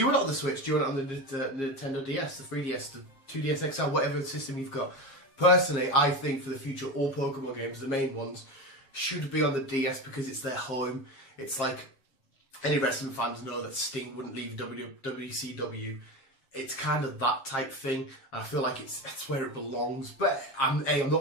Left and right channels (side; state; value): right; late; 7.4 ms